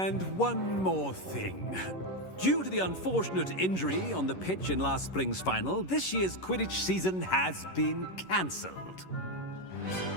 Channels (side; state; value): right; late; 11 ms